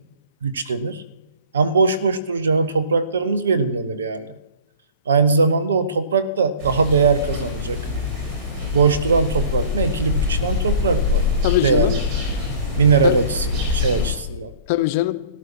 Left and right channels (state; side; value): inverted; both; correlation -0.46